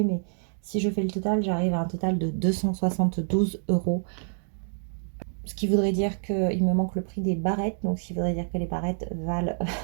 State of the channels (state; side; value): silent; left; 57 dB below the other